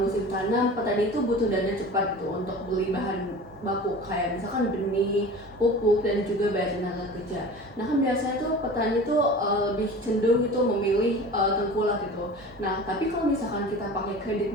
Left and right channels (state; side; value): normal; both; correlation 0.38